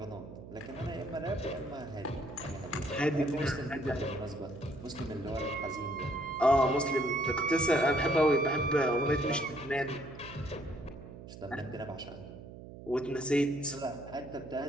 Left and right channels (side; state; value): right; noise; hum, 14 dB below the sound